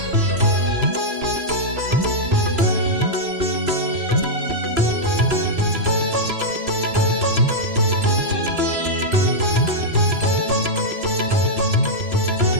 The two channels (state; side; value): late; left; 3.0 ms